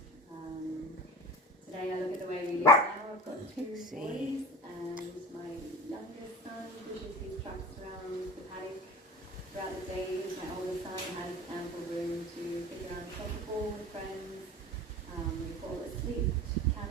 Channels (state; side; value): normal; both; correlation 0.36